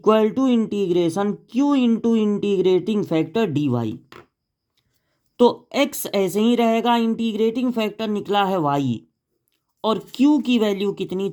to integration q into integrating factor dy। तो x ऐसे ही रहेगा, इंटीग्रेटिंग फैक्टर निकला है y और q की वैल्यू कितनी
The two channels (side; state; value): both; identical; correlation 1.00